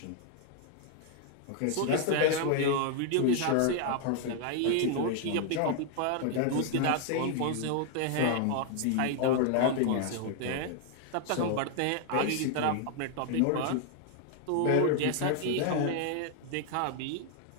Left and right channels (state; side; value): different; both; correlation 0.00